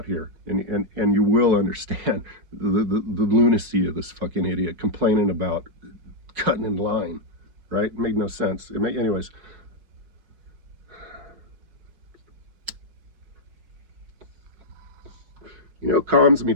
here, and you will understand the lunacy of this fucking idiot complaining about cutting in line, right? It made no sense. Anyways. You know, calms me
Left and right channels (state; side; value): late; left; 5.4 ms